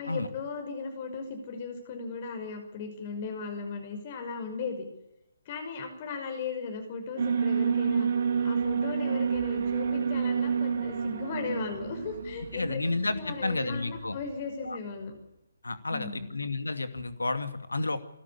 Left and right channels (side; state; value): both; inverted; correlation -0.77